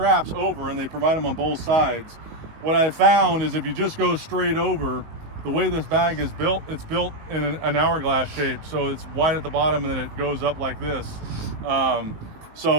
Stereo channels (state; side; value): late; left; 19 ms